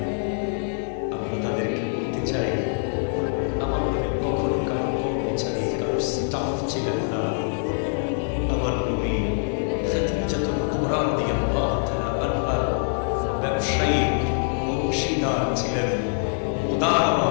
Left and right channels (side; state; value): right; silent; digital silence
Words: আমরা তাদেরকে বলতে চাই আমার নবী কখনো কারো কর্মচারী, কারো স্টাফ ছিলেন না। আমার নবী খাদিজাতুল কুবরা রাদিয়াল্লাহু তাআলা ব্যবসায়ী অংশীদার ছিলেন, উদার